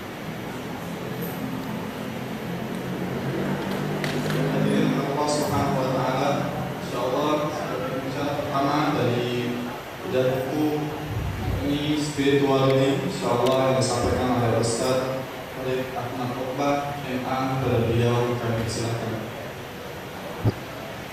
Hadirin Allah Subhanahu wa taala, insyaallah pembicara pertama dari bedah buku ini spirituality, insyaallah yang disampaikan oleh Ustaz Farid Ahmad Rohbah MA. Kepada beliau kami persilakan.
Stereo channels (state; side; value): identical; both; correlation 1.00